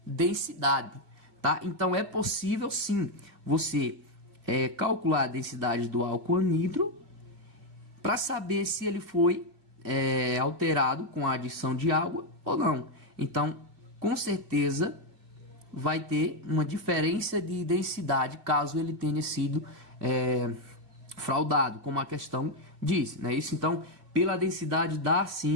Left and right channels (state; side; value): late; left; 2.4 ms